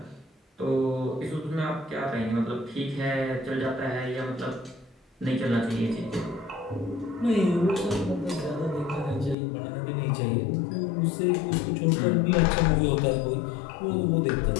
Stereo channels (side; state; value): right; drops out; at 9.3 s